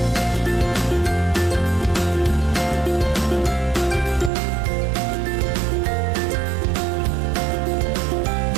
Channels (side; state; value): left; drops out; at 4.3 s